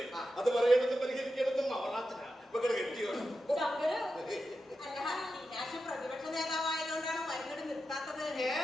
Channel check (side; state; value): both; normal; correlation 0.90